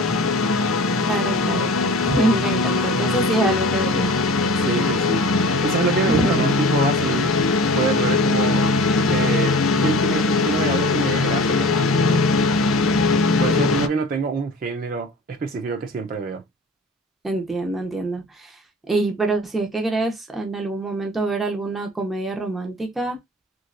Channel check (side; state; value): both; normal; correlation 0.40